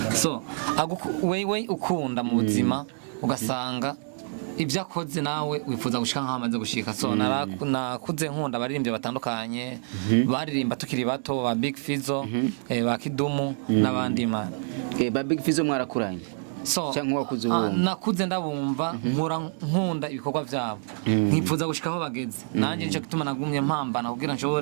wewe ukunda mu buzima ugasanga ibyo akoze nawe wifuza gushika nk'amaze gushika nakuze nkunda abaririmbyi batandukanye baririmba tukiri bato ba Big Fizzo ba Kidumu n'abandi mana. Ba Big Fizzo mwarakuranye cyangwa wakuze ubu? Nakuze ndabumva nkunda ibikorwa byabo nkifuza gushika aho bageze nanjye nicyo gituma nagumye mpambana kugira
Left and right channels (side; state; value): left; silent; 60 dB below the other